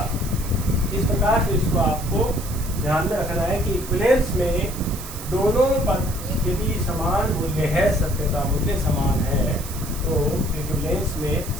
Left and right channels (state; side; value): noise; right; hiss, 12 dB below the sound